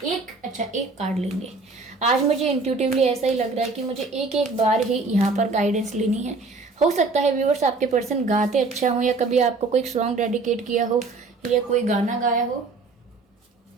एक कार्ड लेंगे। आज मुझे इंट्यूटिवली ऐसा ही लग रहा है कि मुझे एक बार ही यहाँ पर गाइडेंस लेनी है। हो सकता है व्यूअर्स आपके पर्सन गाते अच्छा हो, या कभी आपको कोई सॉन्ग डेडिकेट किया हो, या कोई गाना गाया हो।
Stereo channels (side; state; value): left; quieter; 3.8 dB